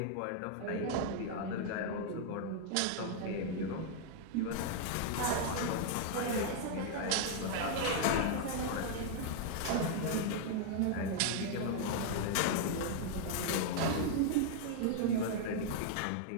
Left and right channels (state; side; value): different; both; correlation -0.01